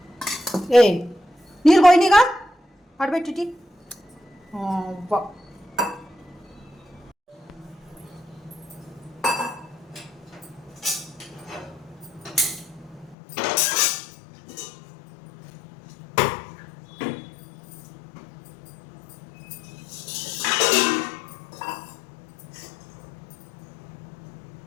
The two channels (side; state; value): right; drops out; at 13.2 s